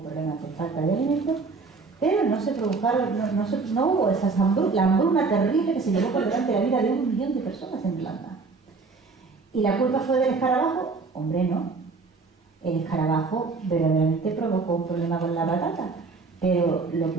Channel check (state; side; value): quieter; left; 4.3 dB